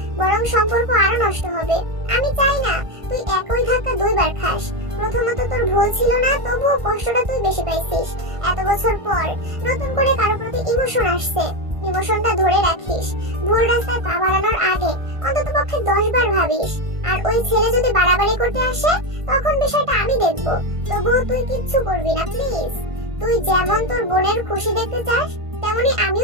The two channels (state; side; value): late; left; 1.5 ms